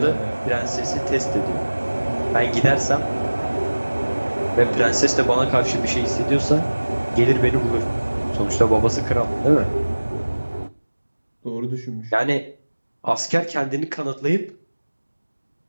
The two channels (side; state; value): both; inverted; correlation -1.00